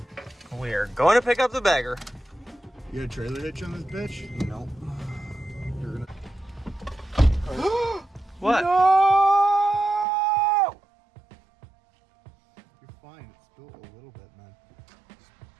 We're going to pick up the bagger. You got a trailer hitch on this bitch? No. You're gonna. What? No! You're fine. It spilled a little bit, man. It's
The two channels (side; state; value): left; drops out; at 10.1 s